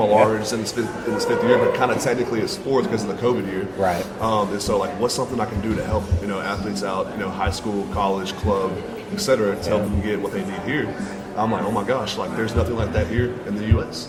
is in its fifth year, but kind of technically it's fourth because of the COVID year. Right. And so, like, what's something I can do to help, athletes out, high school, college, club, etc., to help them get what they need here? I'm like, oh my gosh, like there's nothing like that here in the U.S.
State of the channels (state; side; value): identical; both; correlation 1.00